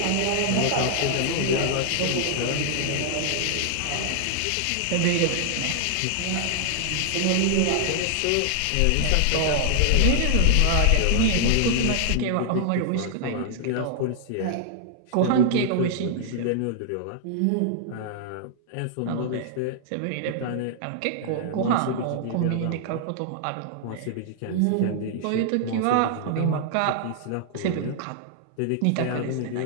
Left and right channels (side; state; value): both; different; correlation 0.00